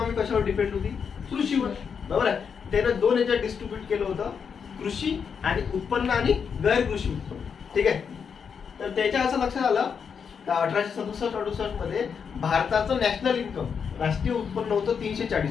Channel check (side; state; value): right; quieter; 6.6 dB